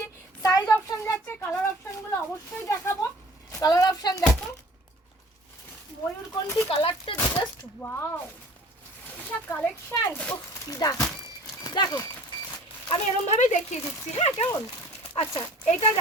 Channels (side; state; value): both; normal; correlation 0.48